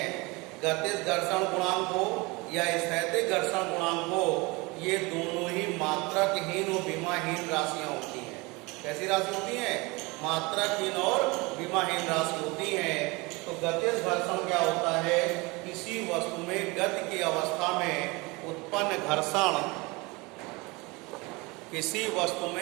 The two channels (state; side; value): quieter; left; 25.3 dB